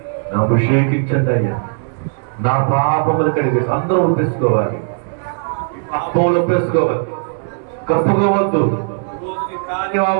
అభిషేకించండి అయ్యా. నా పాపములు కడిగేసి అందరూ ఒప్పేసుకోవాలి, పాపములు ఒప్పేసుకోవాలి, కప్పుకోవద్దు.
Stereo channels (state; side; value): silent; left; 58 dB below the other